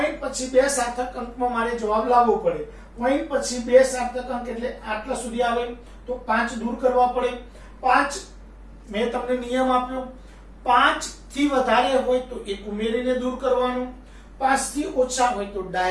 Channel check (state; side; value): identical; both; correlation 1.00